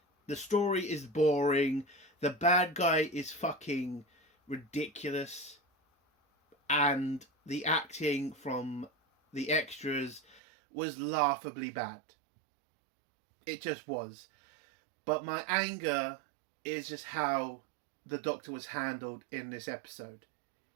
The story is boring. The bad guy is fucking ridiculous. And the acting from the extras was laughably bad. It just was. But my anger is just how the Doctor was handled in this episode.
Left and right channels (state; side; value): drops out; left; at 10.4 s